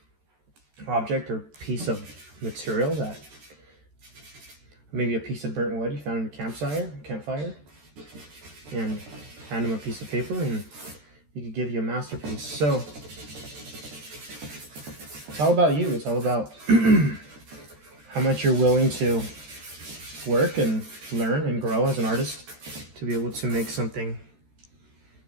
object or piece of material, that maybe a piece of burnt wood you found in a campfire, and hand them a piece of paper and he could give you a masterpiece. So it's all about you. It's all about how much you're willing to work and learn and grow as an artist to be able to make something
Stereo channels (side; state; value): left; late; 13 ms